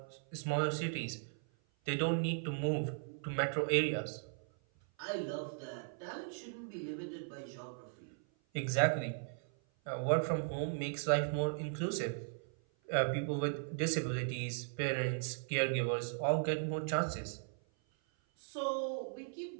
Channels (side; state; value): left; silent; 53 dB below the other